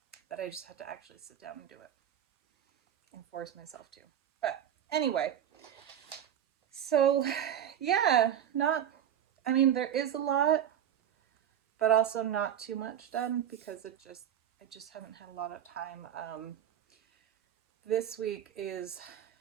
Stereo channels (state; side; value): quieter; left; 10.0 dB